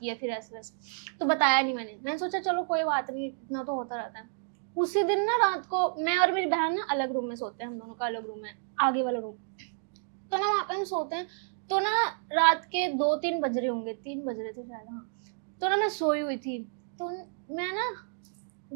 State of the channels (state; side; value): silent; left; digital silence